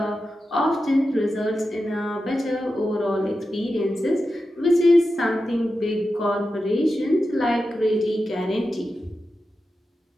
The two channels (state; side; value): normal; both; correlation 0.91